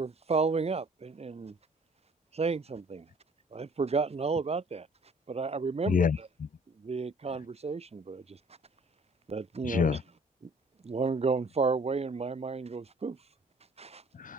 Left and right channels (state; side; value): normal; both; correlation 0.55